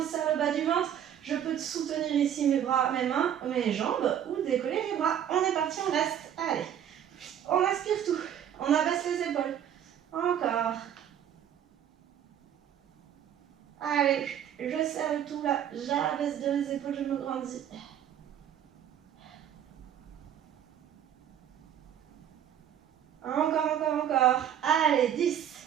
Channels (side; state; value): left; quieter; 9.8 dB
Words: serre le bas du ventre. Je peux soutenir ici mes bras, mes mains, mes jambes ou décoller les bras. On est parti, on reste. Allez, on aspire tout. On abaisse les épaules. Encore. Allez, je serre le tout là. J'abaisse de mes épaules, je me grandis. Encore. Allez, 10,